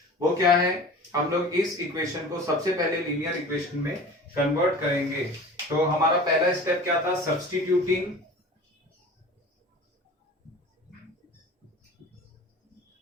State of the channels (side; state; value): both; normal; correlation 0.40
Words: वो क्या है, हम लोग इस इक्वेशन को सबसे पहले लीनियर इक्वेशन में कन्वर्ट करेंगे। तो हमारा पहला स्टेप क्या था, सब्स्टिट्यूटिंग